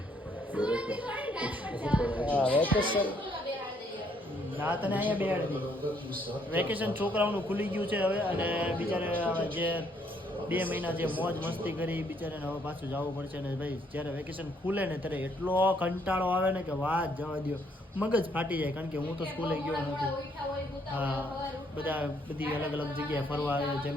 વેકેશન ના તને અહીંયા બેહાડી વેકેશન છોકરાઓનું ખુલી ગયું છે હવે. અને બિચારે જે 2 મહિના જે મોજ મસ્તી કરી બિચારાને હવે પાછું જવું પડશે. ને ભાઈ જ્યારે વેકેશન ખુલે ને ત્યારે એટલો કંટાળો આવે ને કે વાત જવા દો, મગજ ફાટી જાય. કારણ કે હું તો સ્કૂલે ગયો નથી. બધી અલગ અલગ જગ્યાએ ફરવા આવે. જેમ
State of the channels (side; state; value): both; normal; correlation 0.69